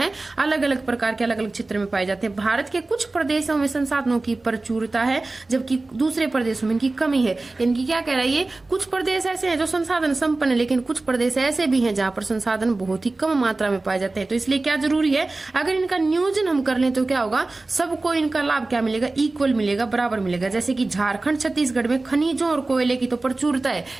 अलग अलग प्रकार के अलग अलग क्षेत्र में पाए जाते हैं। भारत के कुछ प्रदेशों में संसाधनों की प्रचुरता है जबकि दूसरे प्रदेशों में इनकी कमी है। इनकी क्या कह रहा है, ये कुछ प्रदेश ऐसे हैं जो संसाधन संपन्न है, लेकिन कुछ प्रदेश ऐसे भी हैं जहाँ पर संसाधन बहुत ही कम मात्रा में पाए जाते हैं। तो इसलिए क्या जरूरी है, अगर इनका नियोजन हम कर लें तो क्या होगा, सबको इनका लाभ क्या मिलेगा, इक्वल मिलेगा, बराबर मिलेगा। जैसे कि झारखंड छत्तीसगढ़ में खनिजों और कोयले की प्रचुरता है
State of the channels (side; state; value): left; quieter; 3.2 dB